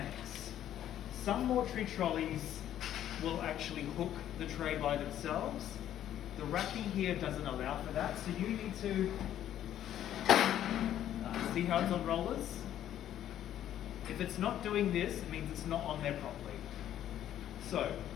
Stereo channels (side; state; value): right; quieter; 11.4 dB